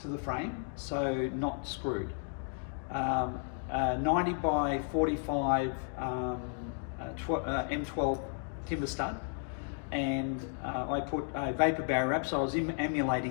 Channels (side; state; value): right; silent; 55 dB below the other